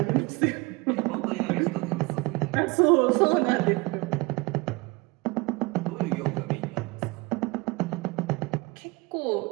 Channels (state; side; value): quieter; left; 24.7 dB